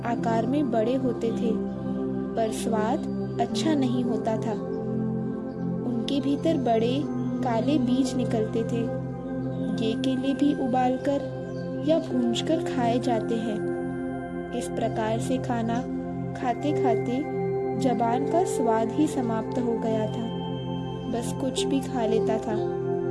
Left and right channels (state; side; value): identical; both; correlation 1.00